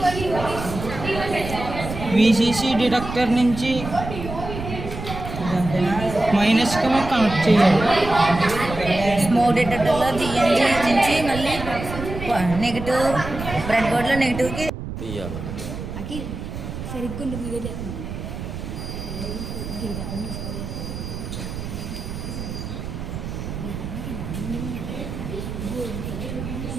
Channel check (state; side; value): noise; right; rumble, 8 dB below the sound